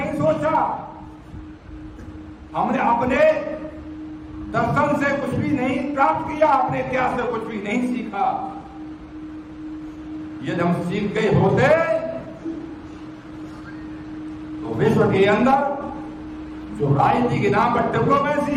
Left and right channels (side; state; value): both; identical; correlation 1.00